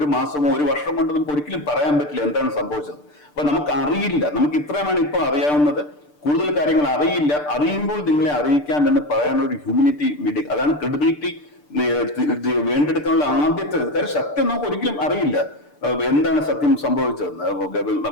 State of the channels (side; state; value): right; late; 6.8 ms